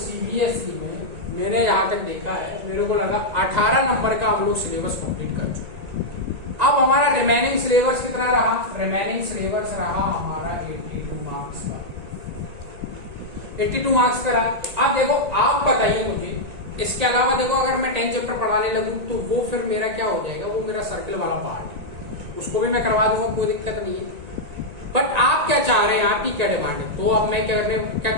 में मैंने यहाँ तक देखा है, मेरे को लगा 18 नंबर का हम लोग सिलेबस कंप्लीट कर चुके हैं। अब हमारा रिमेनिंग सिलेबस कितना रहा, रिमेनिंग सिलेबस रहा हमारा 82 मार्क्स का। 82 मार्क्स का रहा। अब देखो आप बताइए मुझे, इसके अलावा देखो अगर मैं 10 चैप्टर पढ़ाने लगूं तो वो फिर मेरा क्या हो जाएगा, वो मेरा सर्किल वाला पार्ट है, उसको भी मैं करवा दूंगा, कोई दिक्कत नहीं है। बट आप क्या चाह रहे हैं, आपकी क्या डिमांड है। तो अब मैं क्या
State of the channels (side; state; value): left; late; 1.9 ms